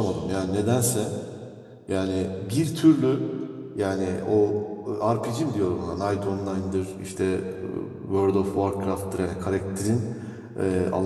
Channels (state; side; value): identical; both; correlation 1.00